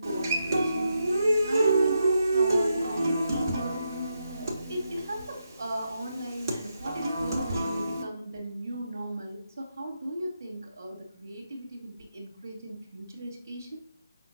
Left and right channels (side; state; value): both; inverted; correlation -0.84